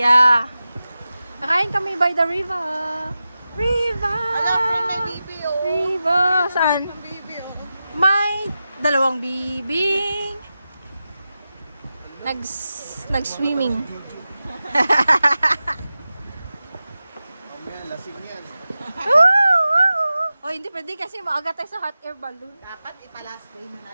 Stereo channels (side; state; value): both; inverted; correlation -0.93